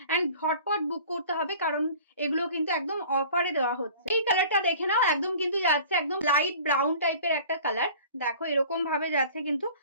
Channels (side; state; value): both; inverted; correlation -0.45